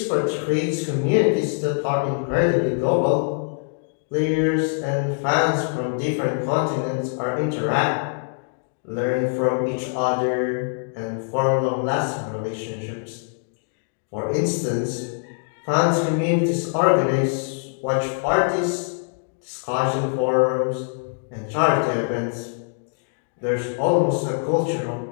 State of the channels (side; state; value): right; silent; digital silence